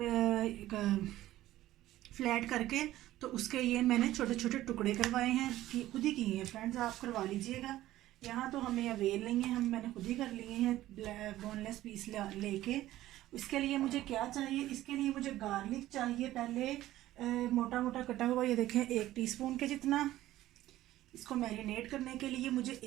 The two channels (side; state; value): left; quieter; 14.9 dB